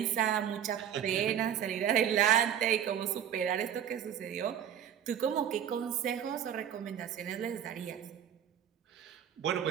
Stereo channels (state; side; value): quieter; left; 9.5 dB